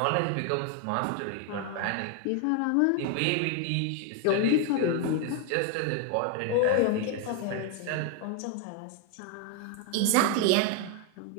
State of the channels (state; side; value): different; both; correlation 0.00